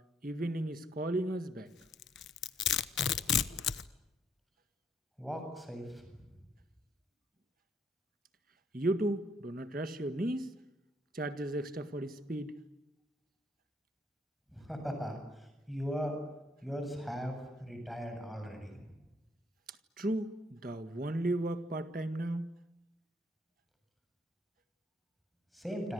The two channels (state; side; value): normal; both; correlation 0.69